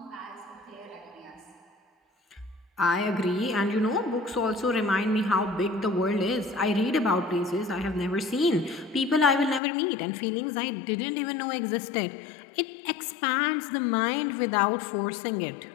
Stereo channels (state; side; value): drops out; right; at 9.6 s